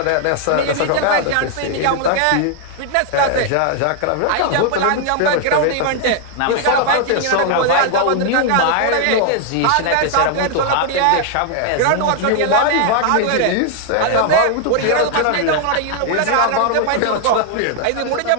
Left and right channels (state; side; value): different; both; correlation 0.00